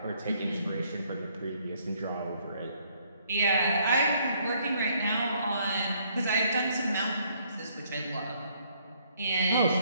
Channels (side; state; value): both; inverted; correlation -0.66